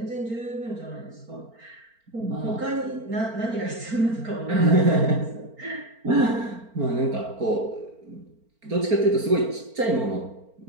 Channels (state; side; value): late; left; 4.4 ms